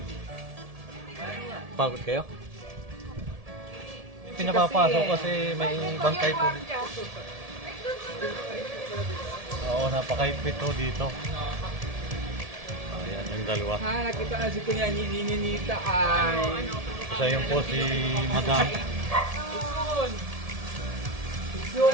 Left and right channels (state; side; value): late; left; 1.7 ms